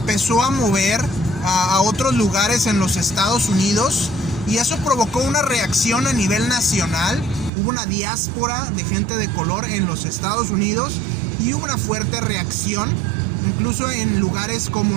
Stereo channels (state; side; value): drops out; left; at 7.5 s